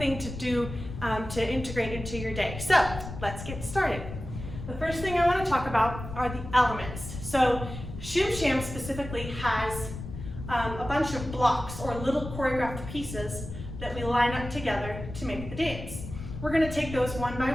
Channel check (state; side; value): noise; left; rumble, 9 dB below the sound